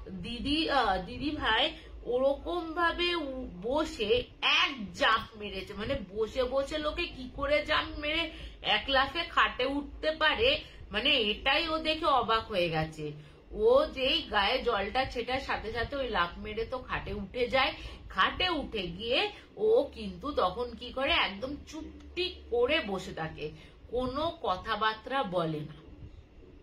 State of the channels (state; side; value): identical; both; correlation 1.00